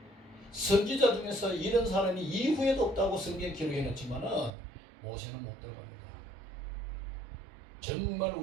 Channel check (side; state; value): left; drops out; at 4.5 s